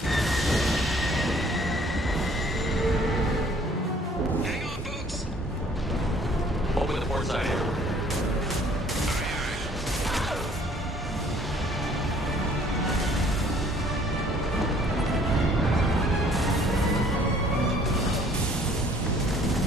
Hang on, folks! Open the port side here.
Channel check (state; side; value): normal; both; correlation 0.57